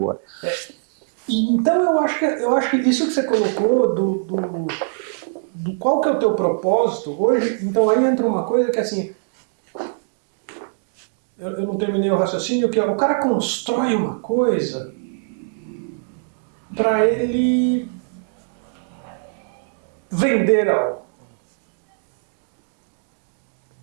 Então eu acho que isso que você colocou do qual que é o teu propósito hoje, então aí entra uma coisa que assim, eu não terminei o raciocínio, que o cara constrói uma coisa para ele vender algo.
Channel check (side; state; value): left; silent; digital silence